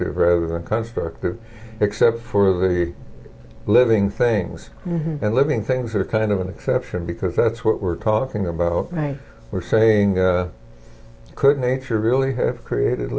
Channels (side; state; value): both; identical; correlation 1.00